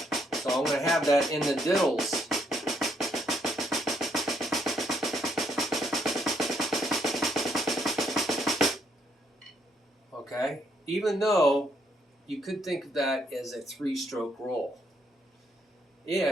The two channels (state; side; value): normal; both; correlation 0.72